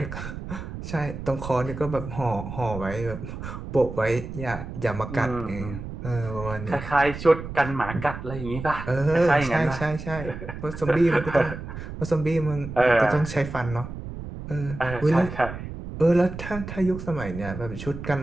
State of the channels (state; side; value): noise; right; rumble, 9 dB below the sound